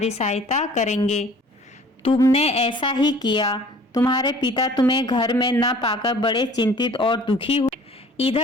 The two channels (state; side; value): normal; both; correlation 0.50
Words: सहायता करेंगे। तुमने ऐसा ही किया। तुम्हारे पिता तुम्हें घर में न पाकर बड़े चिंतित और दुखी हुए।